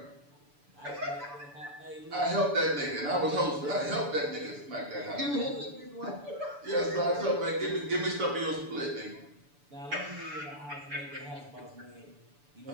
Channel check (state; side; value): late; left; 6.9 ms